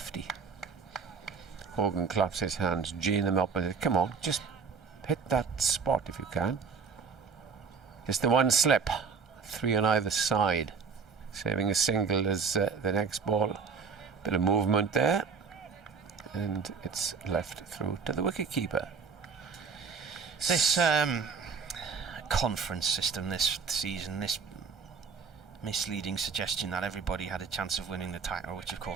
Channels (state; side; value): quieter; left; 5.6 dB